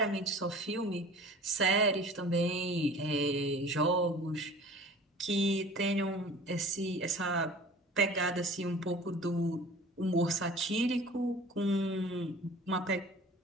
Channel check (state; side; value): normal; both; correlation 0.43